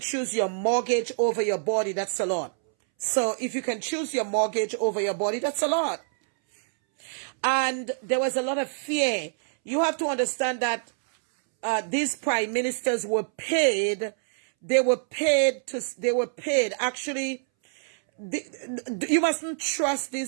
your mortgage over your body, that's a lot. So if you can choose your mortgage over your body, that's a lot. And there was a lot of fear. You have to understand that these prime ministers were paid. They were paid. Actually, You mustn't trust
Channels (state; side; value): silent; left; 61 dB below the other